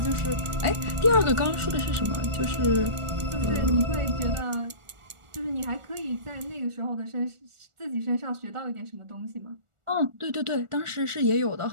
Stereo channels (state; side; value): late; left; 1.4 ms